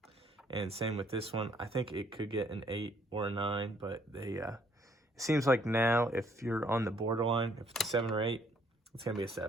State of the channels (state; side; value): normal; both; correlation 0.65